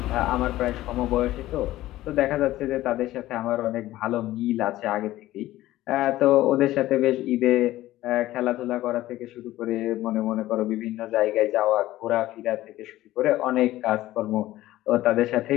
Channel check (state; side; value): quieter; right; 15.7 dB